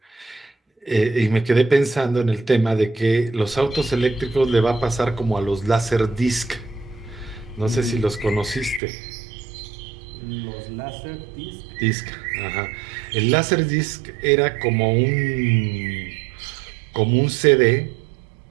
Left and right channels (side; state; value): left; drops out; at 8.8 s